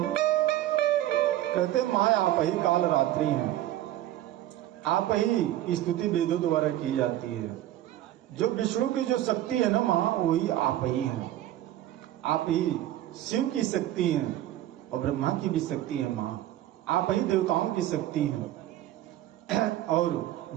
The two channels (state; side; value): quieter; left; 13.7 dB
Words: कहते माँ आप ही काल रात्रि हैं, आप ही स्तुति वेदों द्वारा की जाती है। जो विष्णु की जो शक्ति है ना माँ, वही आप ही हैं। आप ही शिव की शक्ति हैं और ब्रह्मा की भी शक्ति है माँ। आप ही देवताओं की शक्ति हैं और